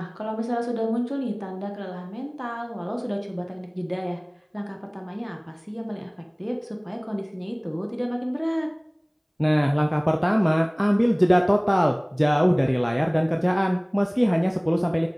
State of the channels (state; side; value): identical; both; correlation 1.00